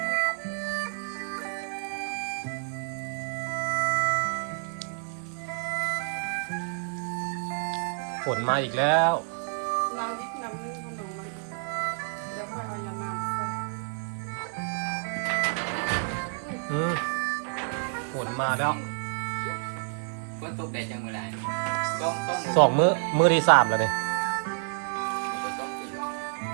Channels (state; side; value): silent; left; 59 dB below the other